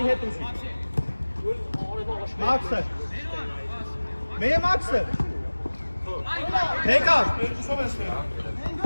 Max. Mehr Max.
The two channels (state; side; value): inverted; both; correlation -1.00